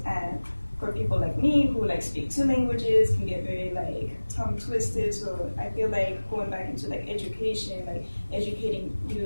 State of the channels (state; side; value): inverted; both; correlation -1.00